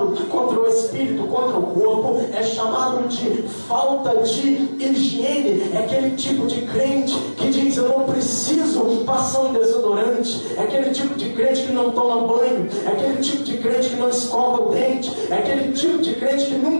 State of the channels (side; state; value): both; inverted; correlation -1.00